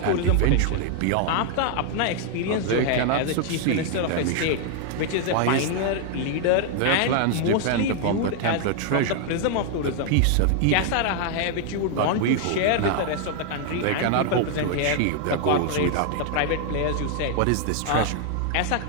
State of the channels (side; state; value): both; different; correlation 0.00